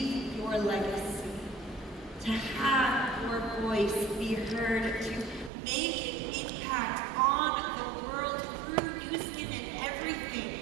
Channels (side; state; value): left; drops out; at 5.5 s